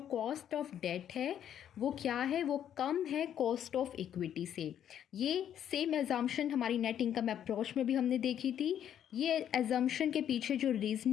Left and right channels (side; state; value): right; quieter; 9.9 dB